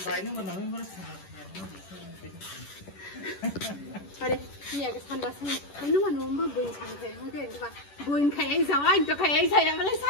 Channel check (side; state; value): right; late; 10 ms